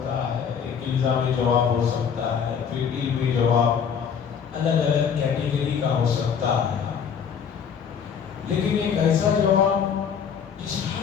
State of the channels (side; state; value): right; quieter; 7.2 dB